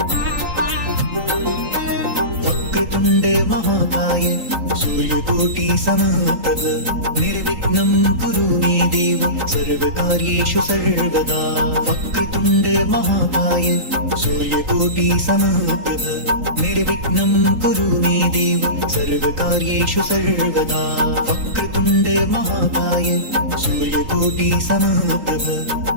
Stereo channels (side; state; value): left; late; 3.8 ms